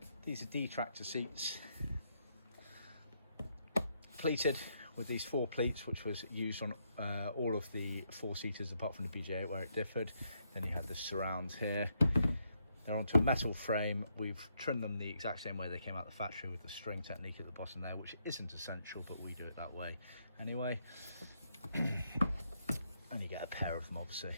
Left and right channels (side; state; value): both; inverted; correlation -0.77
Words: these are detractor seats, pleated with these four pleats, which was used on all of the four-seaters apart from the BJ8 where it differed. Then you have the surrounds here. They're onto a metal frame. We've trimmed them the exact same way they came out the factory with the string technique at the bottom there, which isn't essential, but we do it that way anyway. And you get a pair of them obviously